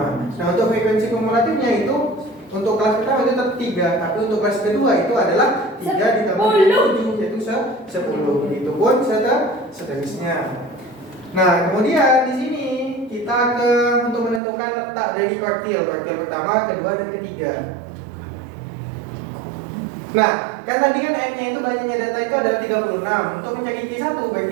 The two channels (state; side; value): drops out; left; at 14.4 s